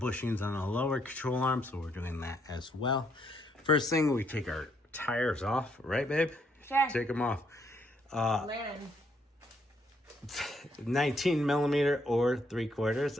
on the lower control arm, so we're doing that as well. First thing, we take our tires off, right, babe? Sure. Take them off. Landon. 19 millimeter or 3/4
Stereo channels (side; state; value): both; normal; correlation 0.72